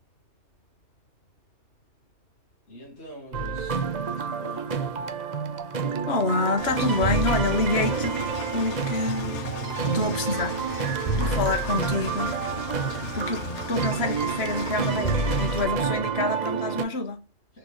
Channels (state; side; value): late; right; 3.0 ms